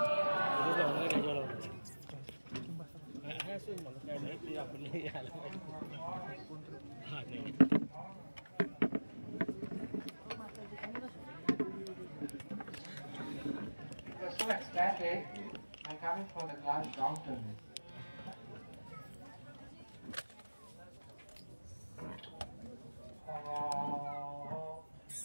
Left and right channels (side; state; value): both; inverted; correlation -1.00